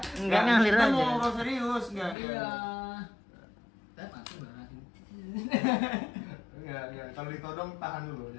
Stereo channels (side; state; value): right; drops out; at 2.1 s